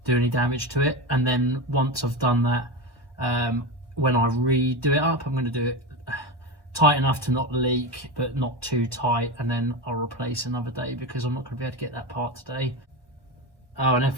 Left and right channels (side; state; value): right; late; 1.2 ms